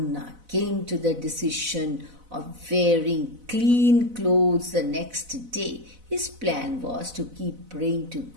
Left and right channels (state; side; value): late; left; 4.0 ms